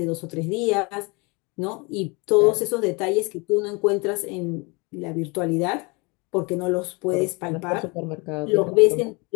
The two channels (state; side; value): quieter; right; 28.8 dB